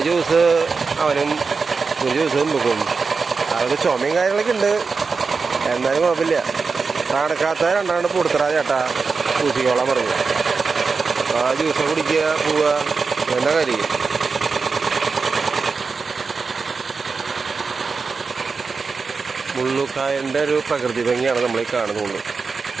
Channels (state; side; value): quieter; left; 4.7 dB